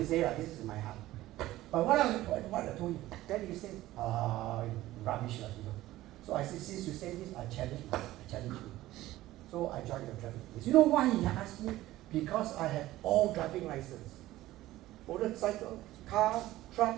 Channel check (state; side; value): quieter; left; 16.0 dB